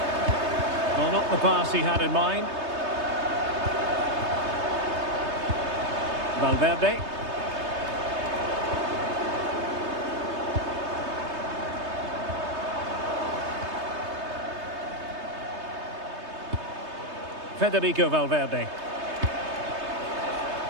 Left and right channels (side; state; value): left; late; 3.2 ms